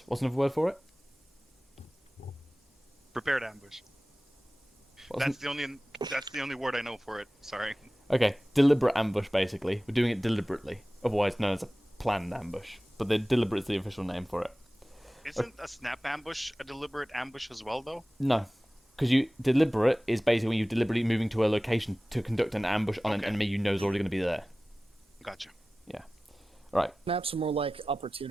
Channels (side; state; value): both; normal; correlation 0.97